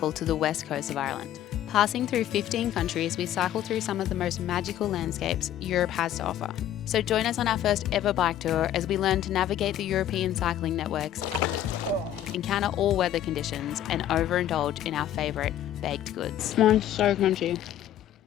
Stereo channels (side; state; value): right; quieter; 11.6 dB